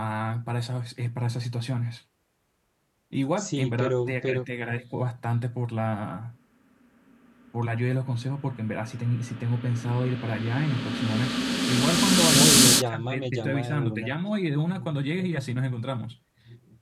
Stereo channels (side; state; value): both; identical; correlation 1.00